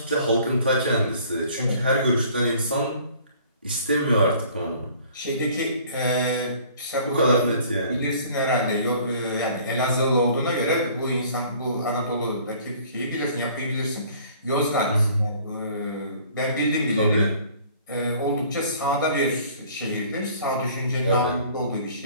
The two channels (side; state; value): both; inverted; correlation -0.53